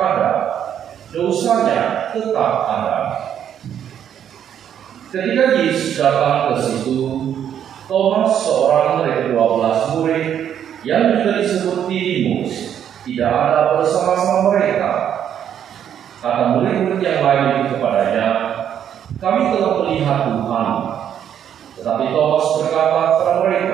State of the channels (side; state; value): left; quieter; 9.4 dB